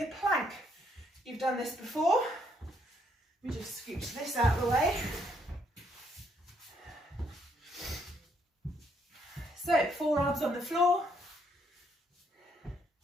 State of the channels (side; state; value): both; normal; correlation 0.71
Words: plank. You've done this before. Let me just scooch this out of the way. So, forearms on the floor,